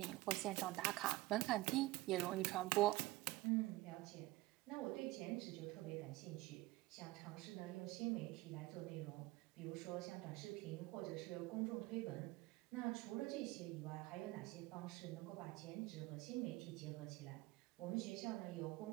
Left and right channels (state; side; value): quieter; left; 19.7 dB